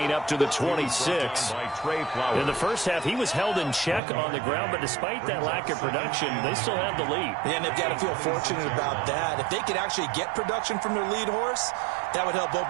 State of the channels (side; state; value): left; drops out; at 4.0 s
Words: up to the 26. In the first half, he was held in check on the ground, but despite that lack of production, they still have the lead. Yeah, and they've got to feel fortunate about that. If they could actually get production from their lead horse, that would help